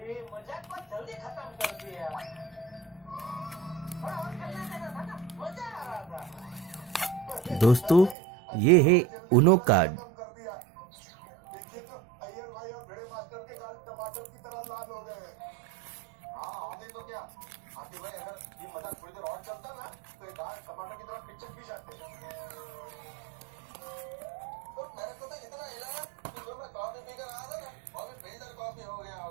मजाक को जल्दी खत्म कर दिया। थोड़ा और खेलना देना था ना, मजा आ रहा था। दोस्तों, ये है उनो कार्ड। देखिए तो अय्यर भाई और भिड़े मास्टर के गाल टमाटर की तरह लाल हो गए हैं। हाँ आगे तो क्या आगे भाई, अगर ये मजाक थोड़ी देर और चलता ना तो ये गाल टमाटर की तरह पिचक भी जाते। तो मेरे को तो इतना हिलाया कि जो मैं कॉफी पीकर आया था ना वो भी फिल्टर कॉफी हो गया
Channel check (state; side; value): drops out; left; at 8.2 s